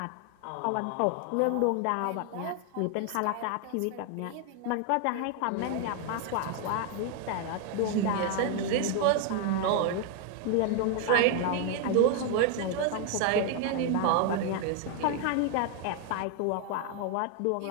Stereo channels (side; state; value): both; different; correlation 0.00